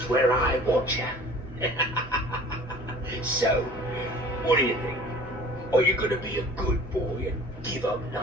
where I want you. So, what do you think? Are you gonna be a good boy and give up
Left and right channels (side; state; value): both; normal; correlation 0.46